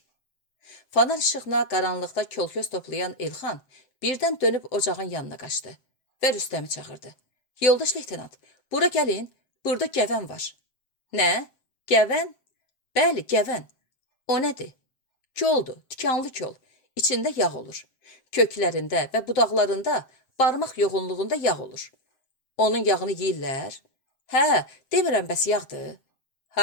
Fanar işığına qaranlıqda kol-köz toplayan Elxan birdən dönüb ocağın yanına qaçdı və Rüstəmi çağırdı. Yoldaş leytenant, bura gəlin, burada gəvən var. Nə? Gəvən? Bəli, gəvən. O nədir? Koldur, tikanlı kol. İçində yağ olur. Köklərində və budaqlarında barmaq yoğunluğunda yağ olur. Onun yağını yeyirlər? Hə, demirəm bəs yağdır.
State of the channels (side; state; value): right; late; 7.6 ms